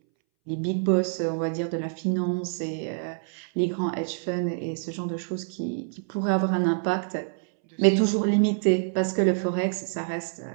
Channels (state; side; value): silent; left; 61 dB below the other